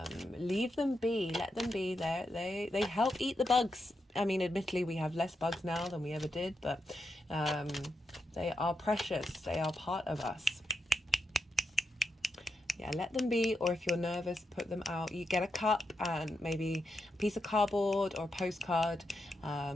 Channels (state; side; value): normal; both; correlation 0.85